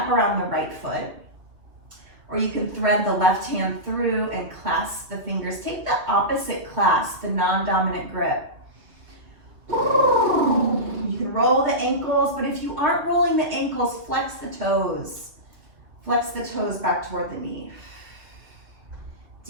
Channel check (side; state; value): left; late; 2.6 ms